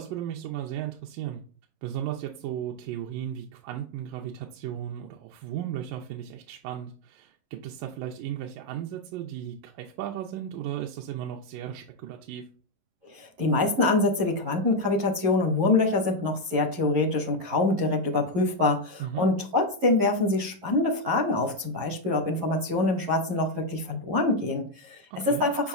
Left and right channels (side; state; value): left; late; 11 ms